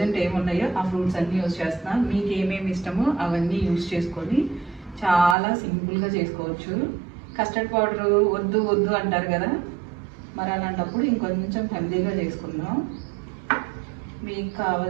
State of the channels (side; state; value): left; drops out; at 5.4 s